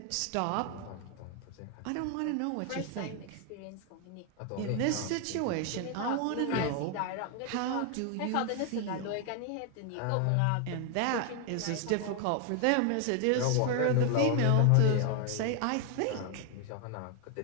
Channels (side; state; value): both; different; correlation 0.00